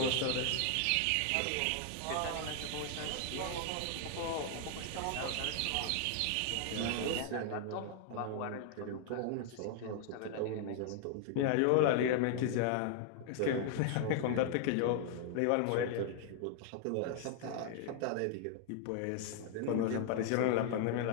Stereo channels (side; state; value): both; different; correlation 0.00